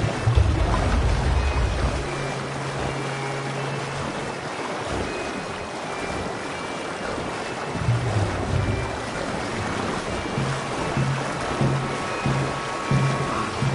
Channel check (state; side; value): identical; both; correlation 1.00